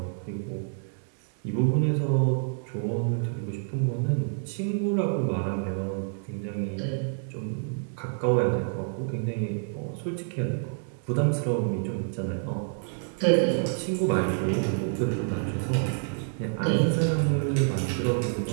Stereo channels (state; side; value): silent; left; digital silence